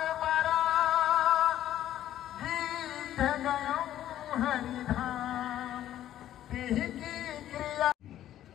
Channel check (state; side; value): quieter; right; 12.2 dB